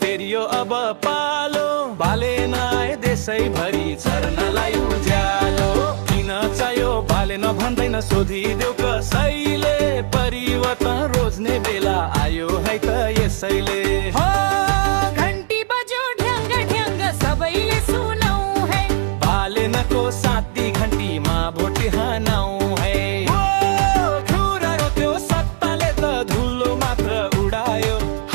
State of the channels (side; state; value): left; silent; digital silence